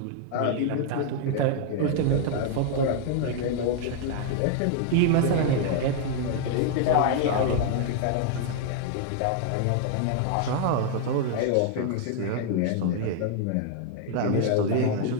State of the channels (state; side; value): different; both; correlation 0.00